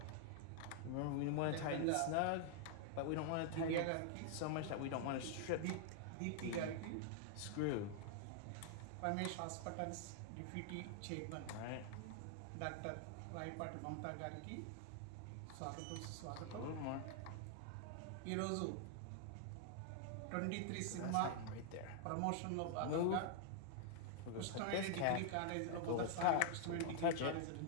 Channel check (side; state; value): both; different; correlation 0.00